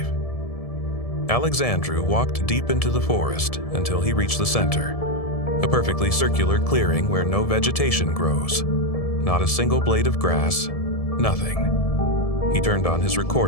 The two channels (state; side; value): late; right; 1.7 ms